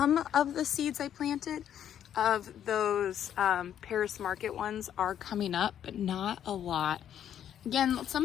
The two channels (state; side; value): quieter; right; 9.9 dB